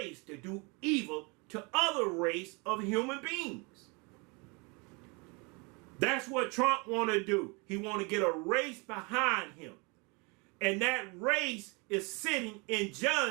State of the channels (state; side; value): quieter; left; 29.9 dB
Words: to do evil to other race of human beings. That's what Trump want to do. He want to get a race behind him. And that race is sitting in